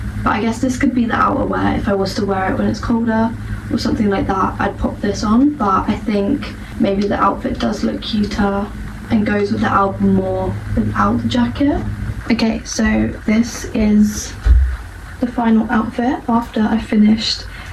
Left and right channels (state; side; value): identical; both; correlation 1.00